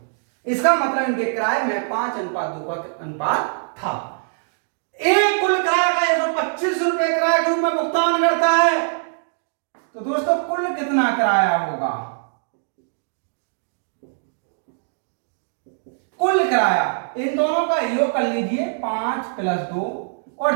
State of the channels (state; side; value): silent; left; digital silence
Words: इसका मतलब इनके किराए में 5:2 का अनुपात था। एक कुल किराया का 125 रुपए किराए के रूप में भुगतान करता है। तो दोस्तों कुल कितना किराया होगा, कुल किराया इन दोनों का योग कर लीजिए 5 + 2